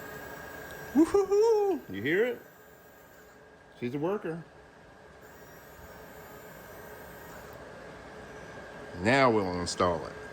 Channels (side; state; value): both; identical; correlation 1.00